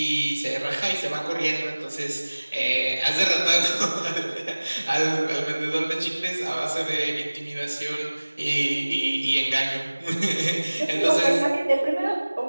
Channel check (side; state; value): both; inverted; correlation -1.00